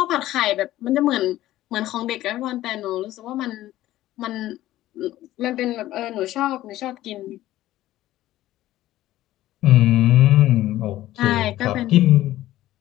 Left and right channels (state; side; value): quieter; right; 14.9 dB